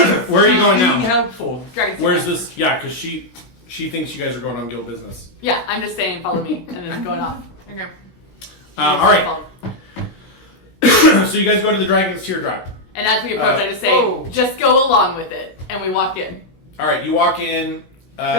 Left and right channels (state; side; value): late; right; 16 ms